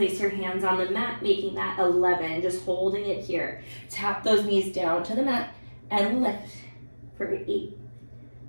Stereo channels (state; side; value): inverted; both; correlation -1.00